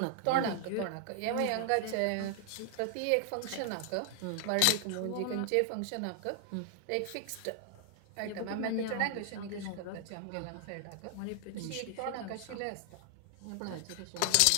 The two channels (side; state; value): both; different; correlation 0.00